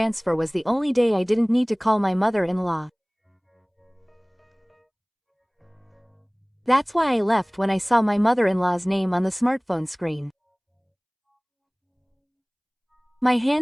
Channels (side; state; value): both; identical; correlation 1.00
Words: was the only day I didn't need to call my mother-in-law. That's why I left when I saw my mother-in-law's name on the smartphone screen. My